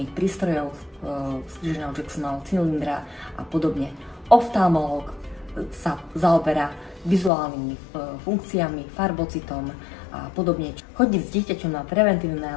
prístrojov, skríženého Jacksonovho cylindra a podobne. Oftalmológ sa zaoberá vizuálnymi funkciami, farbocitom a podobne. Chodiť s dieťaťom na preventívne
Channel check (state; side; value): drops out; right; at 7.3 s